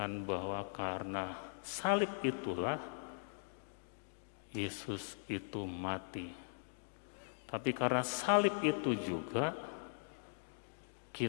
bahwa karena salib itulah Yesus itu mati. Tapi karena salib itu juga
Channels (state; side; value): silent; right; digital silence